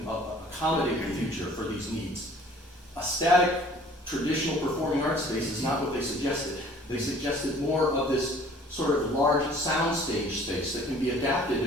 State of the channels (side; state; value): both; normal; correlation 0.52